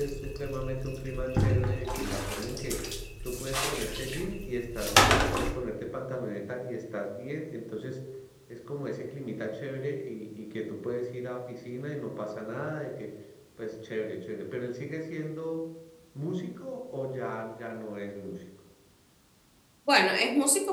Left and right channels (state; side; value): identical; both; correlation 1.00